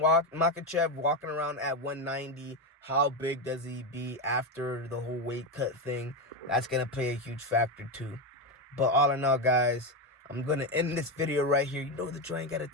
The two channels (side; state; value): both; normal; correlation 0.12